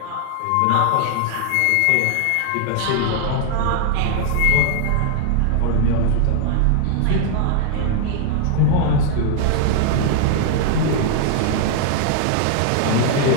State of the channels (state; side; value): different; both; correlation -0.01